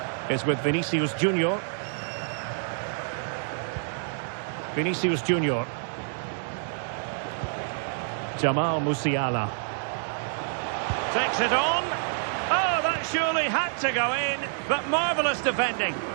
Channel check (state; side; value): silent; left; 60 dB below the other